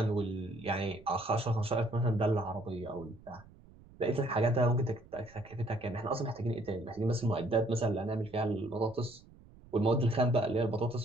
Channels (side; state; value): right; noise; rumble, 23 dB below the sound